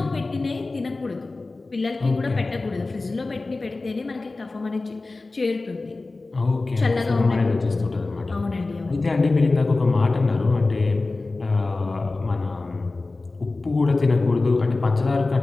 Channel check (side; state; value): right; quieter; 3.4 dB